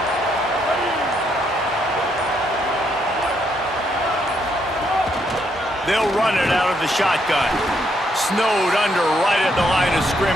They'll run it out of the shotgun. Snowed under right at the line of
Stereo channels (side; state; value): both; normal; correlation 0.74